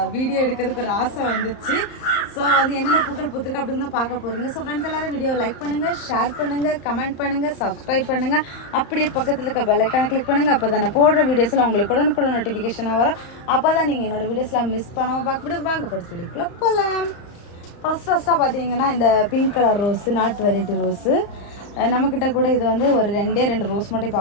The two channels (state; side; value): late; right; 34 ms